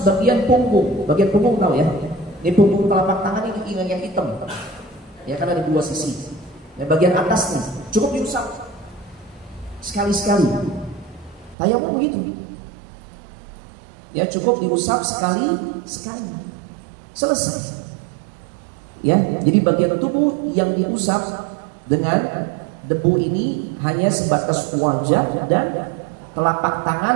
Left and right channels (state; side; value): drops out; left; at 11.6 s